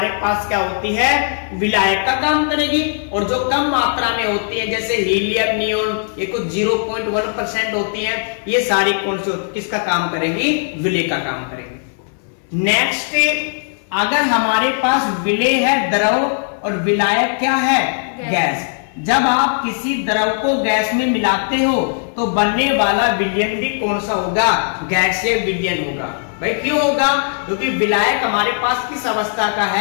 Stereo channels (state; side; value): silent; right; 67 dB below the other